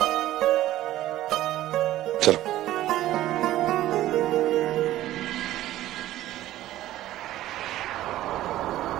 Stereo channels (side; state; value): left; quieter; 14.5 dB